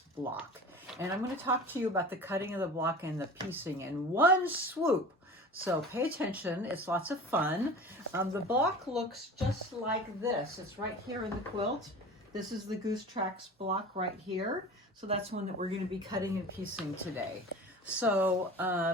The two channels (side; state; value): both; normal; correlation 0.37